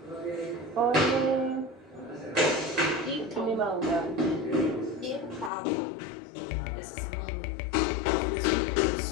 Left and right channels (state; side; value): drops out; right; at 5.5 s